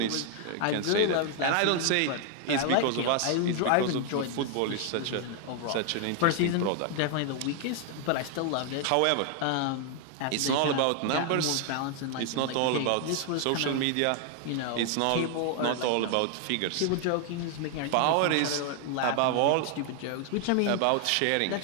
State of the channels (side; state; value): both; different; correlation 0.00